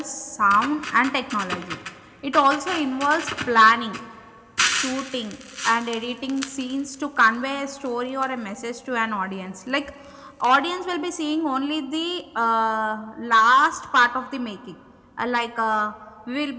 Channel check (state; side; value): identical; both; correlation 1.00